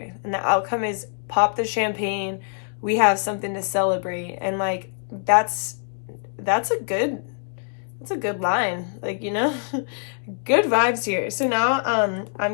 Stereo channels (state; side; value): silent; right; digital silence